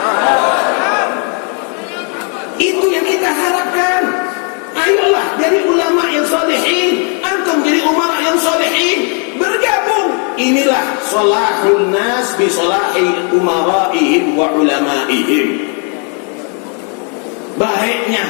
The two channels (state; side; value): quieter; right; 40.0 dB